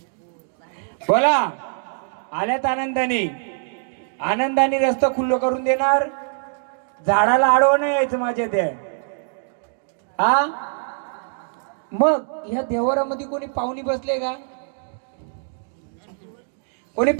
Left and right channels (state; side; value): silent; left; digital silence